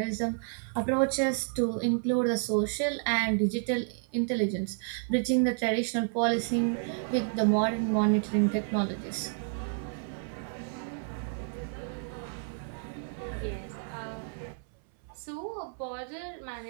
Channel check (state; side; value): silent; left; 57 dB below the other